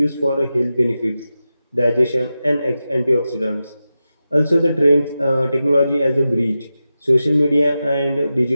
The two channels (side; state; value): both; inverted; correlation -0.92